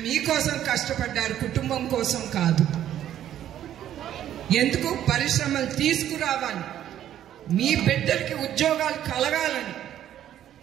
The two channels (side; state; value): left; quieter; 11.3 dB